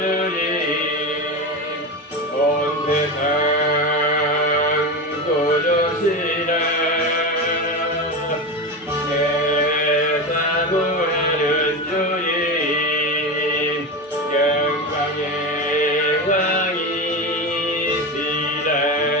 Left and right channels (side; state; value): both; normal; correlation 0.20